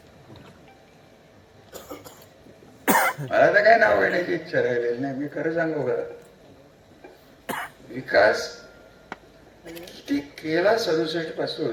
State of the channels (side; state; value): both; identical; correlation 1.00